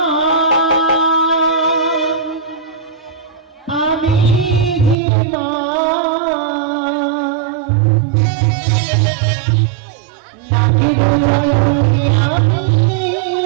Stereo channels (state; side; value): drops out; left; at 5.0 s